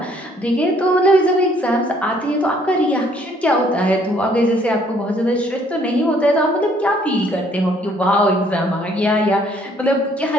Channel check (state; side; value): normal; both; correlation 0.63